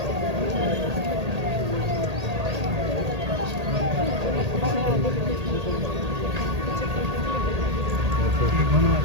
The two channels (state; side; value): late; left; 1.8 ms